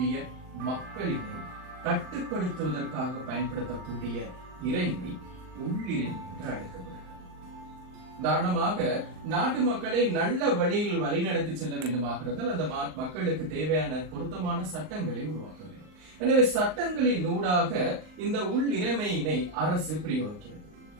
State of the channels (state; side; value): late; left; 39 ms